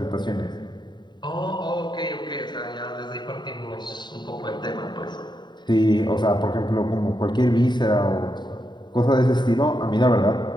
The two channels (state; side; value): late; right; 0.21 ms